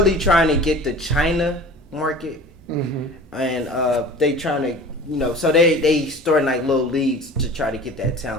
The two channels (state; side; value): normal; both; correlation 0.41